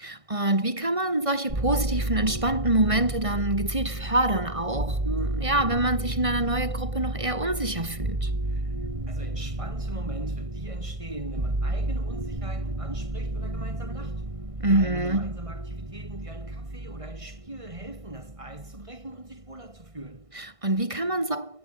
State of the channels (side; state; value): left; late; 1.6 ms